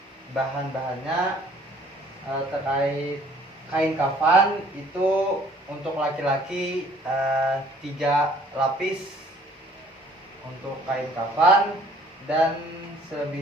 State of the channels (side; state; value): both; normal; correlation 0.57